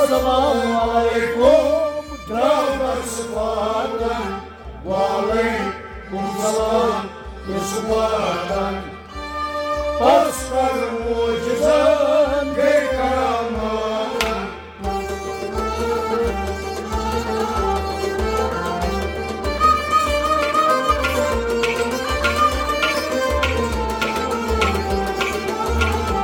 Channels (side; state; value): both; identical; correlation 1.00